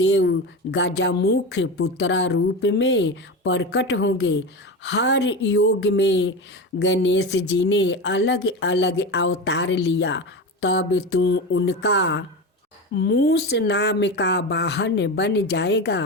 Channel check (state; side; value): normal; both; correlation 0.23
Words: गजमुख पुत्र रूप में प्रकट होंगे। हर योग में गणेश जी ने अलग अलग अवतार लिया। तब तू उनका मूस नाम का वाहन बन